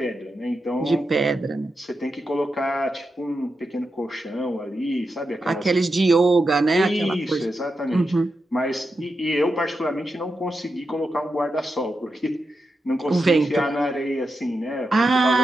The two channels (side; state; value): both; normal; correlation 0.88